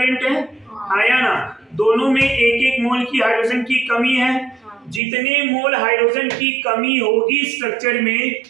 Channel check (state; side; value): drops out; left; at 5.0 s